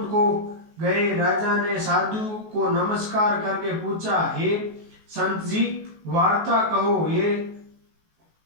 को गए। राजा ने साधु को नमस्कार करके पूछा, हे संत जी, वार्ता कहो। ये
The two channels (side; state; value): left; late; 19 ms